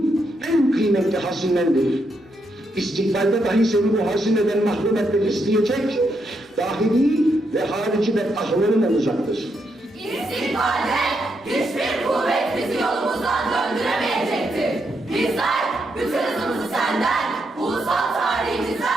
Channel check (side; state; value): both; normal; correlation 0.80